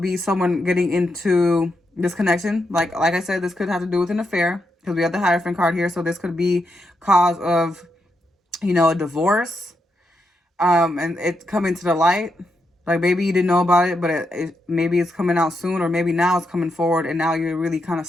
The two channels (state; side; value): normal; both; correlation 0.83